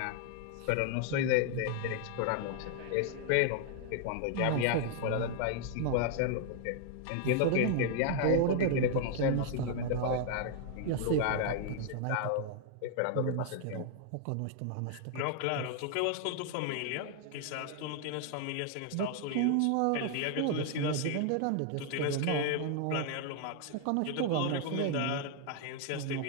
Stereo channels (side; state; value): both; different; correlation 0.00